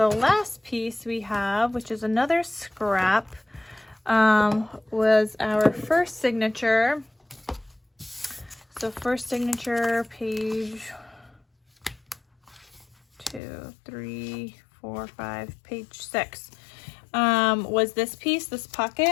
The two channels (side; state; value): right; drops out; at 13.4 s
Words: last piece we have, which is another scrap, was our first signature. So first signature, page 2, 3, 4, 5, page 6, was this piece, this